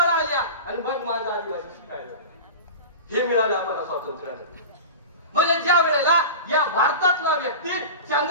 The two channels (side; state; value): both; inverted; correlation -0.30